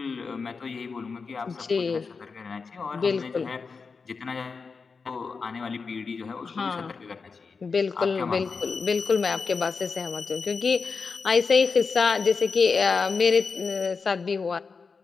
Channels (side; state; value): right; quieter; 4.9 dB